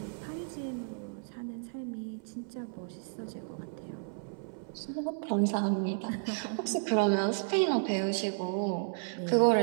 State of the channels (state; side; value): silent; left; 56 dB below the other